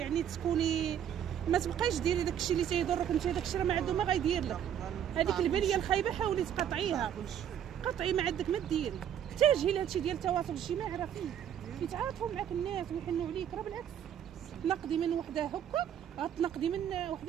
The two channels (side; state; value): left; quieter; 9.6 dB